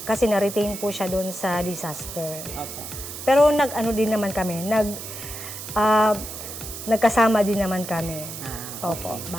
kasi na-retain po siya dun sa disaster. Okay. Pero din naman kami, nagkasama din naman kami. Opo,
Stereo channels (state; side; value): noise; right; hiss, 9 dB below the sound